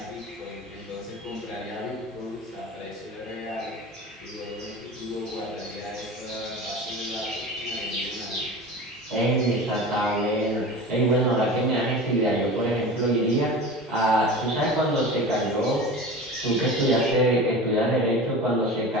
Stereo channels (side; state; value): both; normal; correlation 0.33